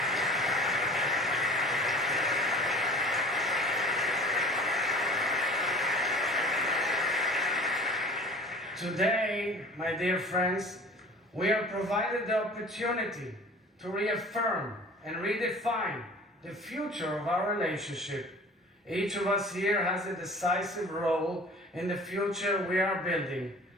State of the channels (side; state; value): both; normal; correlation 0.44